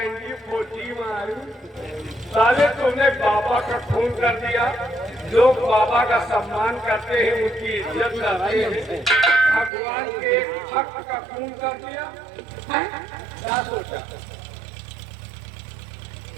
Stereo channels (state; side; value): drops out; left; at 9.7 s